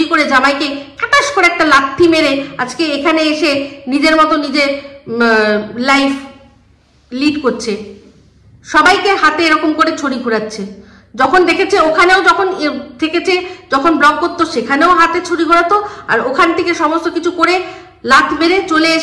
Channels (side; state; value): both; identical; correlation 1.00